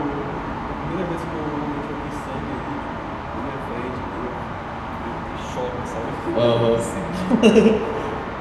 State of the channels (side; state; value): both; identical; correlation 1.00